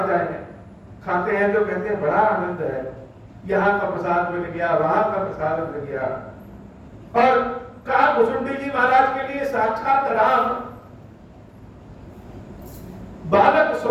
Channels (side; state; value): both; identical; correlation 1.00